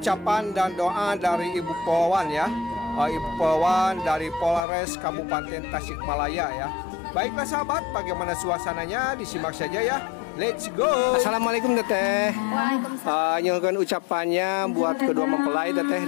dan doa dari Ibu Polwan ya. Ibu Polwan dari Polres Kabupaten Tasikmalaya ya. Baiklah sahabat, bagaimana suasananya disimak saja ya. Let's go. Assalamualaikum teteh. Waalaikumsalam. Nyuhun ucapannya buat kedua mempelai teteh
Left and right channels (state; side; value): drops out; right; at 4.6 s